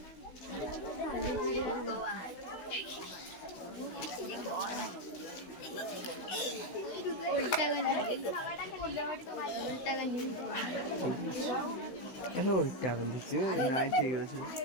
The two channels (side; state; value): right; late; 16 ms